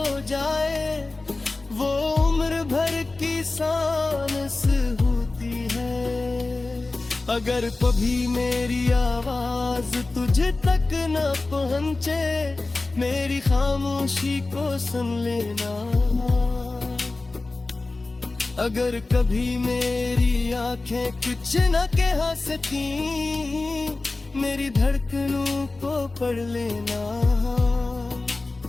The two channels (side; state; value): right; quieter; 3.3 dB